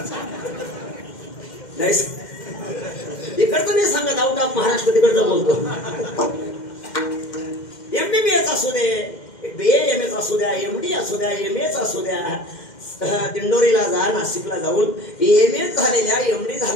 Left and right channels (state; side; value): late; right; 2.1 ms